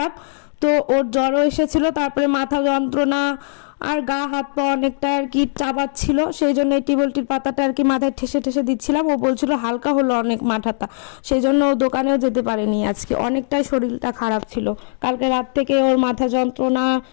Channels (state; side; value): silent; right; digital silence